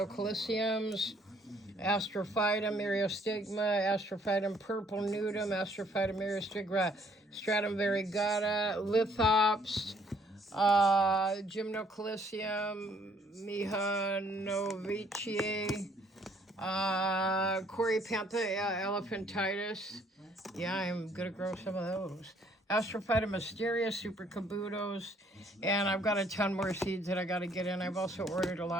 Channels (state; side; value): normal; both; correlation 0.63